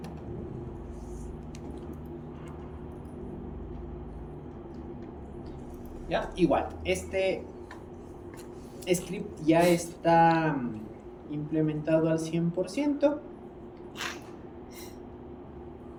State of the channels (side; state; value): both; identical; correlation 1.00